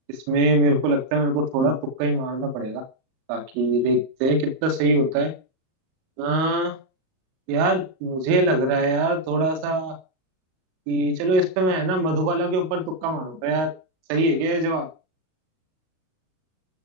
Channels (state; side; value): late; left; 38 ms